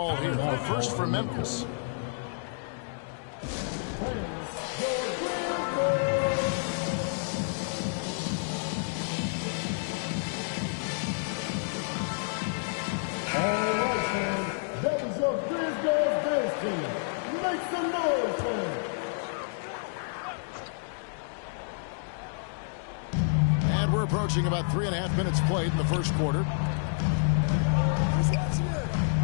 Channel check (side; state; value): right; silent; digital silence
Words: here. The first for Memphis. All right, fans. That was your Grizz dance team. Make some noise, fans. And we're approaching about 3.5 minutes played in the first quarter.